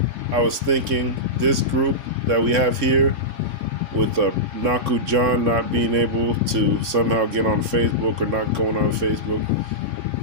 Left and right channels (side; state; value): left; late; 3.6 ms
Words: I was thinking this group that we have here, with Naku John not being able to somehow get on Facebook or not going on Facebook,